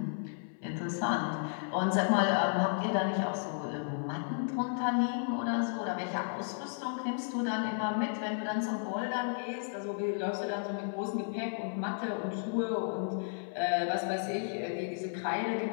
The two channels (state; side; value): silent; right; 55 dB below the other